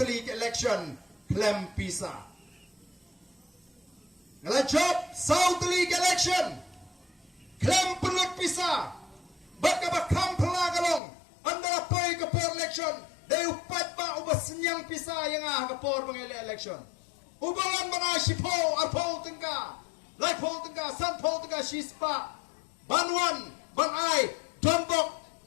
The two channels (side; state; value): right; drops out; at 11.0 s